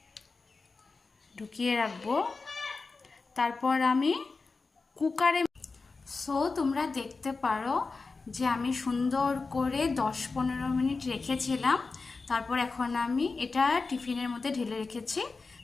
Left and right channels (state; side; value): quieter; right; 4.1 dB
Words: ঢুকিয়ে রাখবো। তারপর আমি কুকারে তোমরা দেখতে পারো যে আমি সুন্দর করে 10-15 মিনিট রেখেছিলাম। তারপর এখন আমি এটা টিফিনের মধ্যে ঢেলে রেখেছি।